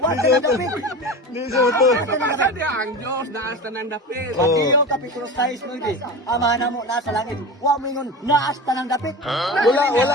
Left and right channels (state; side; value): normal; both; correlation 0.29